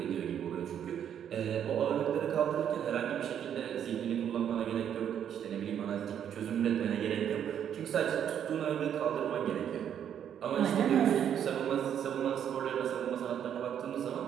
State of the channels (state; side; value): quieter; left; 9.2 dB